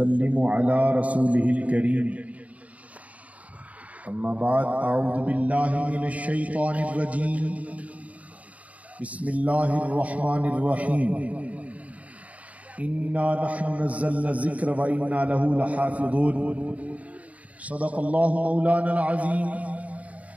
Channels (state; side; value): late; left; 0.069 ms